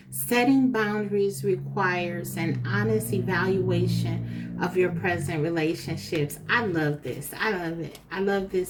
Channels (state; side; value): identical; both; correlation 1.00